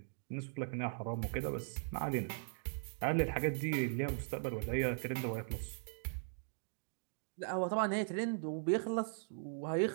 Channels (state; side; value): silent; left; digital silence